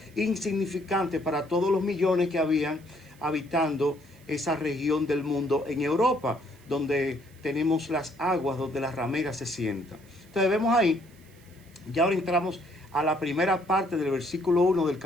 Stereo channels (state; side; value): noise; right; hiss, 28 dB below the sound